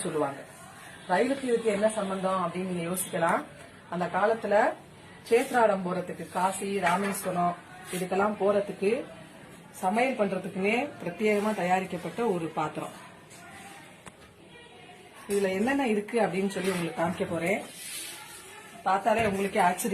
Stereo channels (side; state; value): both; identical; correlation 1.00